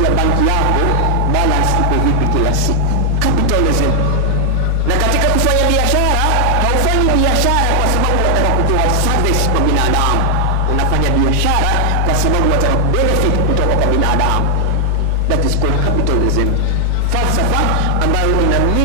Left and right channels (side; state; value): both; different; correlation 0.00